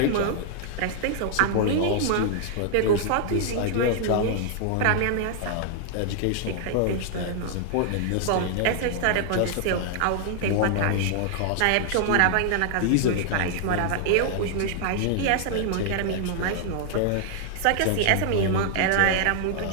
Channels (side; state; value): both; different; correlation 0.00